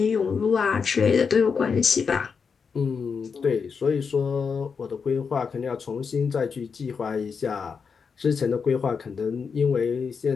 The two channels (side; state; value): right; quieter; 5.8 dB